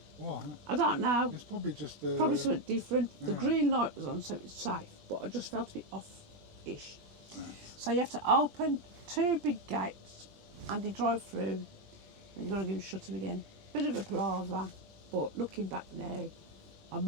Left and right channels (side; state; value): left; late; 20 ms